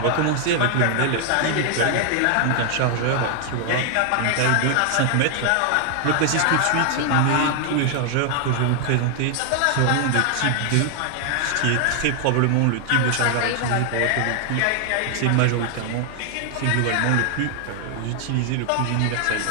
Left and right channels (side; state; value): both; different; correlation 0.00